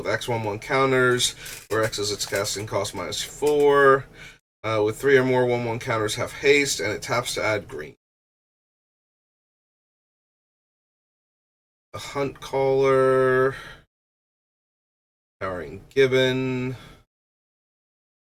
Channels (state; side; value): identical; both; correlation 1.00